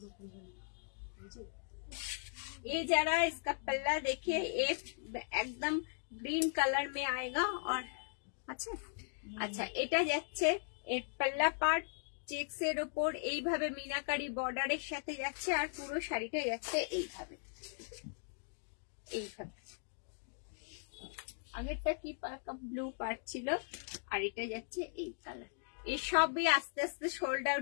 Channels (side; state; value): right; silent; digital silence